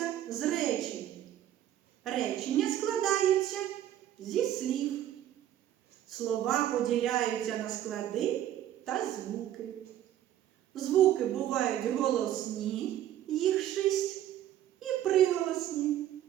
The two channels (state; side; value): quieter; left; 11.9 dB